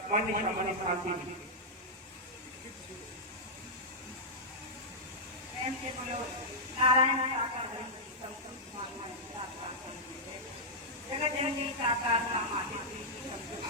मन शांति शांति। नारायण जगत जननी साकार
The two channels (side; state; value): both; normal; correlation -0.09